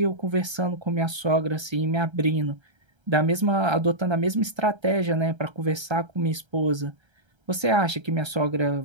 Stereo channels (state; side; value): late; left; 1.3 ms